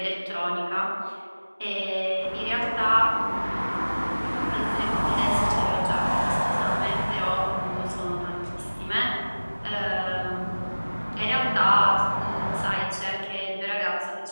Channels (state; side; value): inverted; both; correlation -1.00